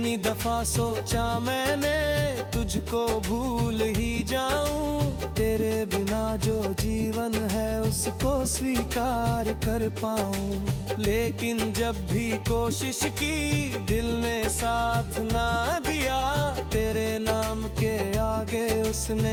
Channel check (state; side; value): identical; both; correlation 1.00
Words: दफा सोचा मैंने तुझको भूल ही जाऊं, तेरे बिना जो जीवन है उसको स्वीकार कर पाऊं। लेकिन जब भी कोशिश की दिल ने साथ ना दिया, तेरे नाम के आगे